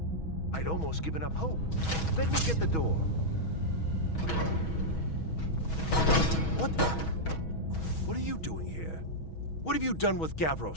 I'd almost given up hope. Let me get the door. What the? What are you doing here? What have you done with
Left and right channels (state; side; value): late; right; 6.2 ms